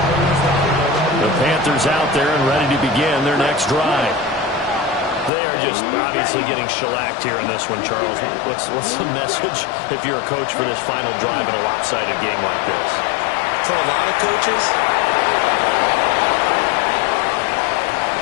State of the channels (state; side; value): drops out; right; at 5.3 s